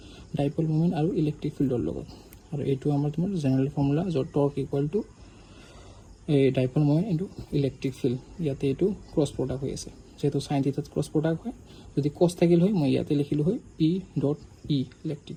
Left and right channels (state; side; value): identical; both; correlation 1.00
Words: ডাইপল মোমেণ্ট আৰু ইলেক্ট্ৰিক ফিল্ডৰ লগত। আৰু এইটো আমাৰ তোমাৰ জেনেৰেল ফৰ্মুলা, য'ত টৰ্ক ইকুৱেল টু এই dipole moment into electric field. ইয়াতে এইটো ক্ৰছ প্ৰডাক্ট হৈ আছে, যেহেতু সাইন থিটাত ক্ৰছ প্ৰডাক্ট হয়, যদি কছ থাকিল হয় মই ইয়াতে লিখিলোঁ হয় P dot E